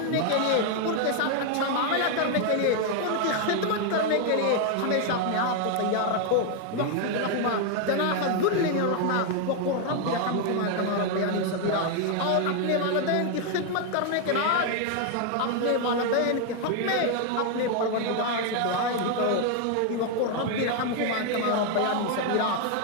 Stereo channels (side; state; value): both; different; correlation 0.01